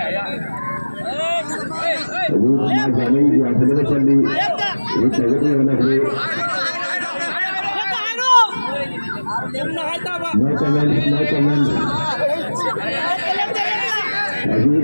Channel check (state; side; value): inverted; both; correlation -1.00